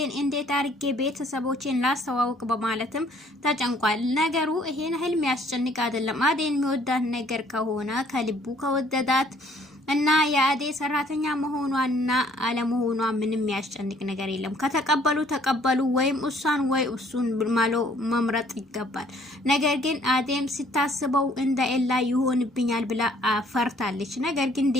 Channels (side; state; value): both; normal; correlation 0.60